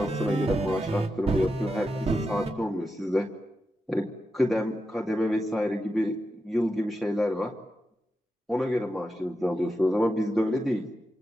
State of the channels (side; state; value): both; normal; correlation 0.88